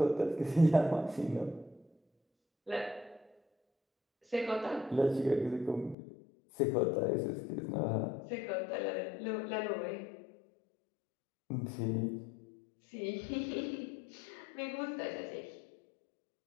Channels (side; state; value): right; drops out; at 6.0 s